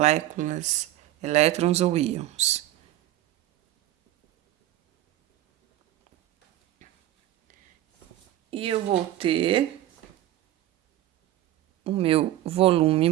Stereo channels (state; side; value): quieter; left; 14.3 dB